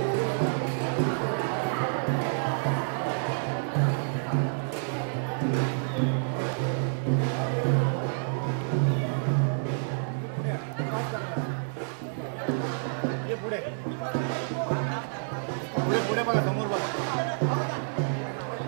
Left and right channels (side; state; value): left; silent; 59 dB below the other